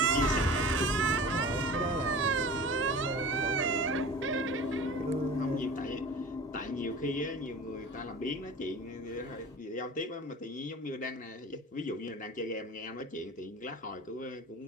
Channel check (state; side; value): normal; both; correlation 0.38